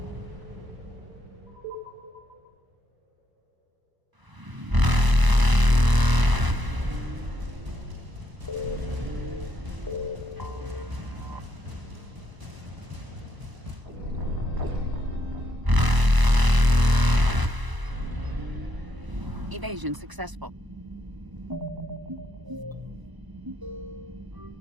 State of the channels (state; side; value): late; left; 1.0 ms